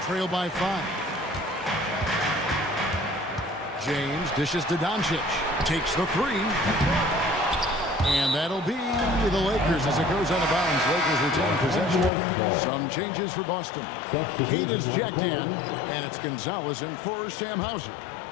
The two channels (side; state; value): right; drops out; at 12.1 s